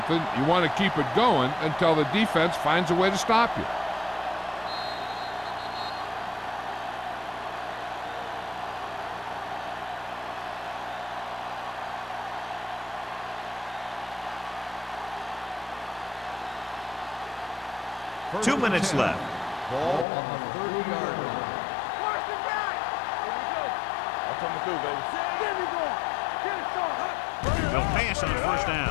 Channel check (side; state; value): right; drops out; at 20.1 s